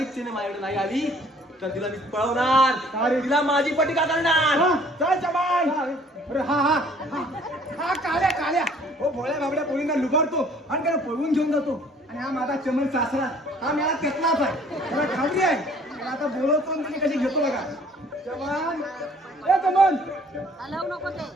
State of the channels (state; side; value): normal; both; correlation 0.56